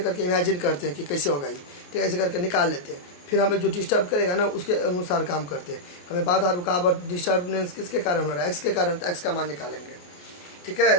करके इमेजिन करते हैं कि कैसे होगा ये, ठीक है, ऐसे करके निकाल लेते हैं, फिर हमें जो डिस्टर्ब करेगा ना उसके अनुसार काम करते हैं। हमें बाधा रुकावट डिस्टर्बेंस किसके कारण हो रहा है, एक्स के कारण, तो एक्स का मान निकालेंगे। ठीक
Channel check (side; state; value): right; late; 28 ms